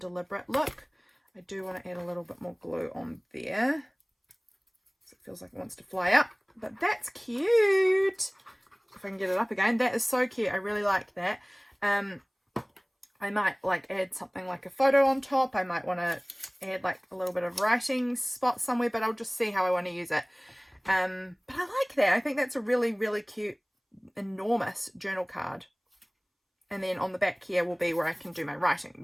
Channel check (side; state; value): both; identical; correlation 1.00